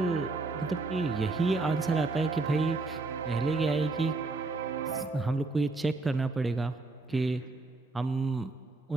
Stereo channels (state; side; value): quieter; left; 3.5 dB